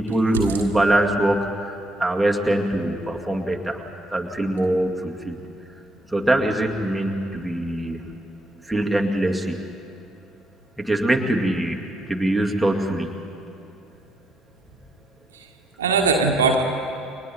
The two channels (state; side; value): normal; both; correlation 0.73